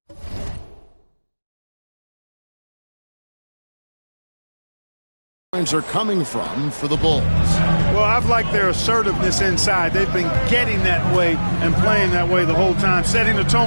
are coming from for the Bulls. Well, I've liked their assertiveness inside. They've been getting that way and playing that way the whole time, setting the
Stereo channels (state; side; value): inverted; both; correlation -1.00